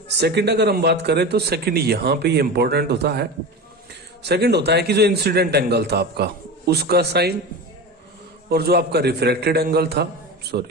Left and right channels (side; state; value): both; normal; correlation 0.27